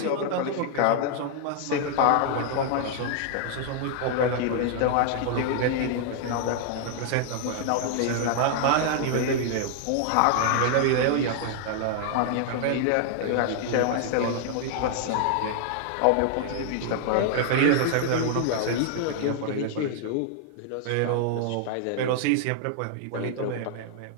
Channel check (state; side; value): different; both; correlation 0.00